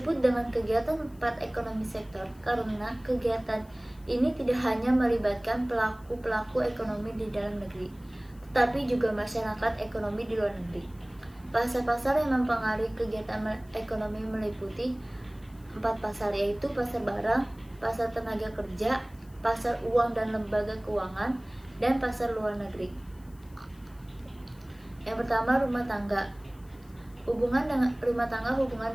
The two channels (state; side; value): noise; left; hiss, 29 dB below the sound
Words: dengan kegiatan empat ekonomi sektor karena kegiatan ini tidak hanya melibatkan pelaku ekonomi di dalam negeri, tetapi juga masyarakat ekonomi di luar negeri. Pasar-pasar yang mempengaruhi kegiatan ekonomi meliputi empat pasar, yaitu pasar barang, pasar tenaga kerja, pasar uang dan lembaga keuangan, dan pasar luar negeri. Yang pertama, rumah tangga. Hubungan dengan